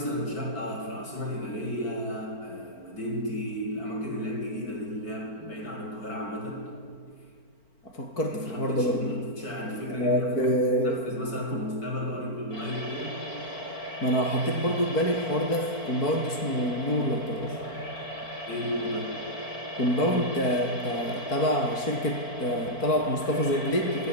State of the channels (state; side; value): late; right; 4.4 ms